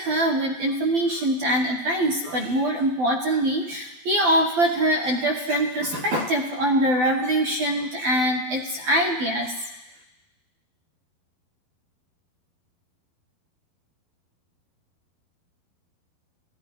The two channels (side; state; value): left; late; 12 ms